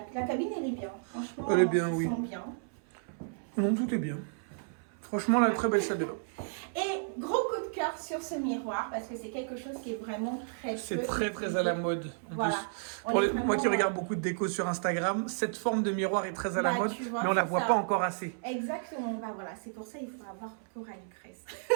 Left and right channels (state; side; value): silent; left; 56 dB below the other